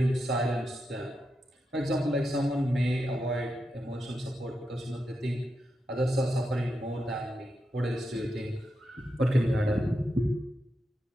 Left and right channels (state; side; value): normal; both; correlation 0.86